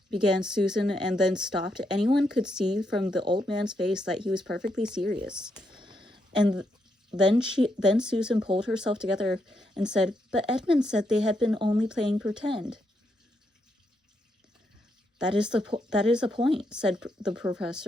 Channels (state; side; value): normal; both; correlation 0.79